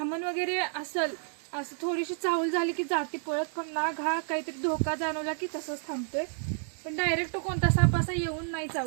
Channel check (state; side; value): silent; left; digital silence